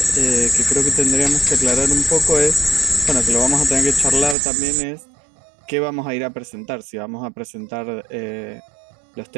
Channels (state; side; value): drops out; left; at 4.4 s